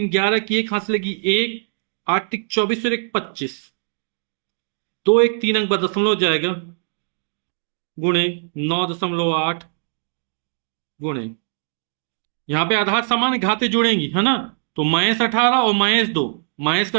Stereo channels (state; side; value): silent; left; digital silence